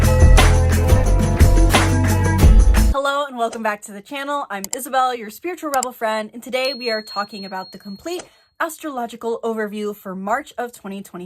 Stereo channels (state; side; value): identical; both; correlation 1.00